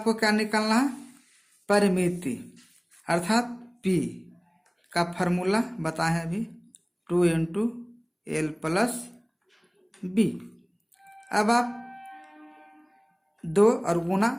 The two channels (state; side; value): identical; both; correlation 1.00